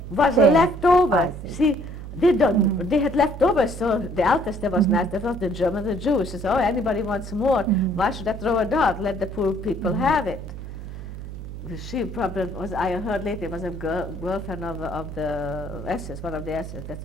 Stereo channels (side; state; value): right; noise; hum, 10 dB below the sound